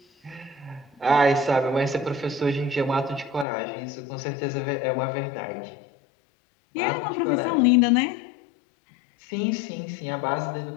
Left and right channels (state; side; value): drops out; right; at 3.5 s